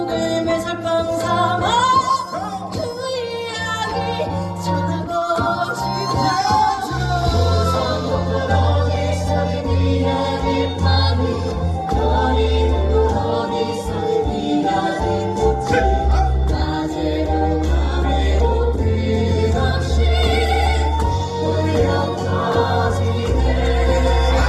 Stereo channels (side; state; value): both; identical; correlation 1.00